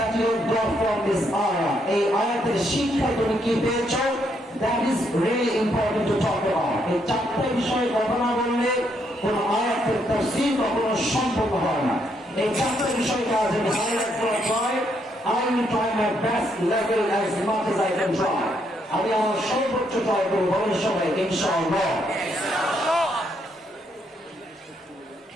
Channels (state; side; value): normal; both; correlation 0.75